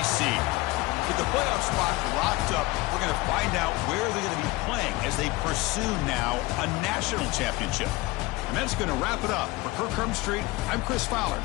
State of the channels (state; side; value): quieter; right; 21.1 dB